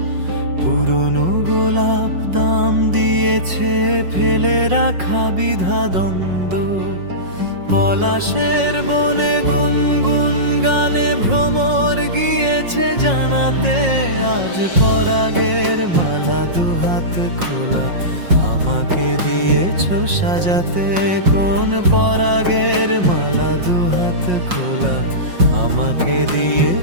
পুরনো গোলাপ দাম দিয়েছে ফেলে রাখা বিধা দ্বন্দ্ব। পলাশের বনে গুনগুন গানে ভ্রমর গিয়েছে জানাতে, আজ পরাগের মালা দুহাত খোলা আমাকে দিয়েছো সাজাতে। কোন পরাগের মালা দুহাত খোলা আমাকে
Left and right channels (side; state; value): left; late; 5.5 ms